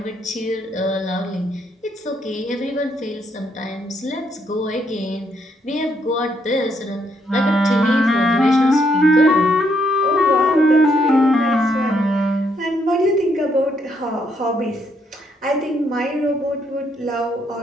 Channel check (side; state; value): both; normal; correlation 0.74